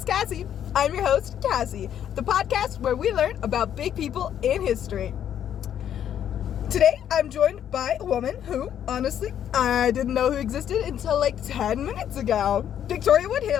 Cassie. I'm your host, Cassie, the podcast where we learn about big people in history. Today, I'm joined by a woman who, honestly, I didn't know who existed until like 10 minutes ago. Victoria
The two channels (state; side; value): quieter; right; 9.9 dB